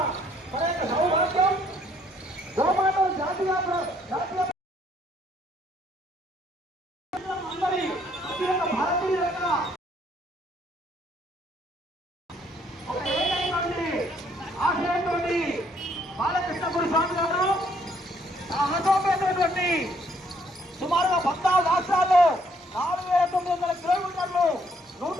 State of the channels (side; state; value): both; normal; correlation 0.66